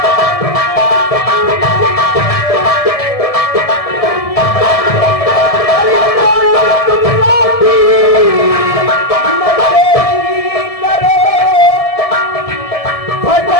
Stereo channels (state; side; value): late; right; 1.7 ms